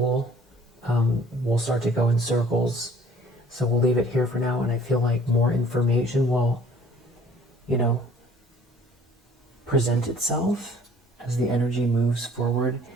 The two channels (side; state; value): both; normal; correlation 0.54